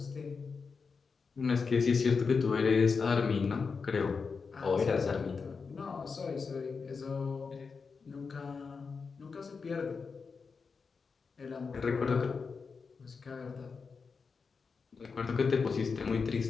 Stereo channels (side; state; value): right; quieter; 5.1 dB